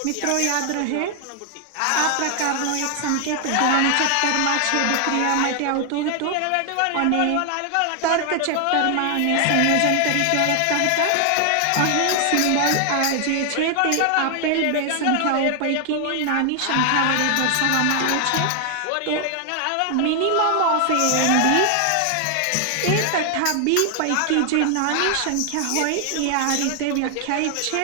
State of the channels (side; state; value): both; different; correlation 0.00